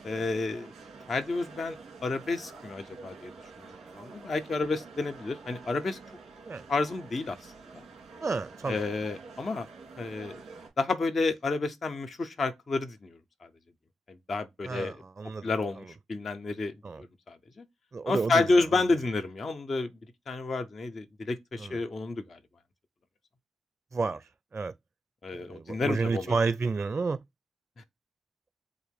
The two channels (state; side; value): normal; both; correlation 0.87